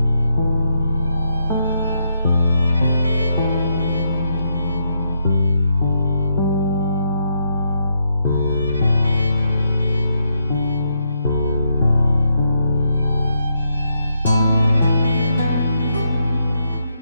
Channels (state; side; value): inverted; both; correlation -0.78